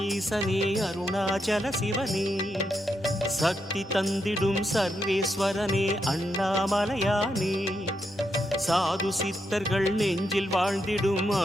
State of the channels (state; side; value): normal; both; correlation 0.82